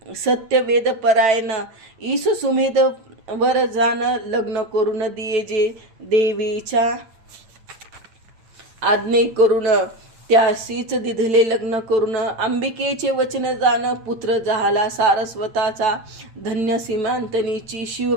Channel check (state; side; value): late; left; 9.0 ms